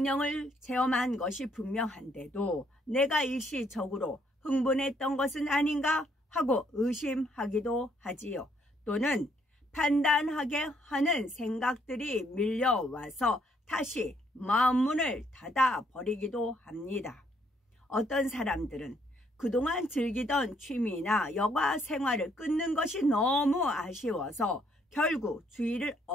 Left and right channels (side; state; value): both; normal; correlation 0.69